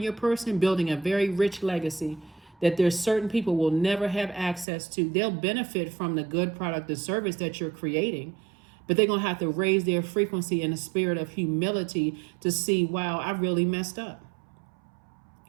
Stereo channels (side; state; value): left; drops out; at 4.7 s